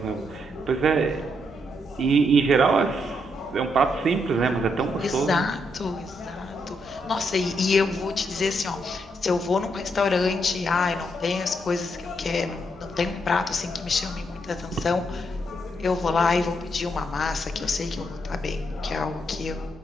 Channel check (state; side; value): normal; both; correlation 0.78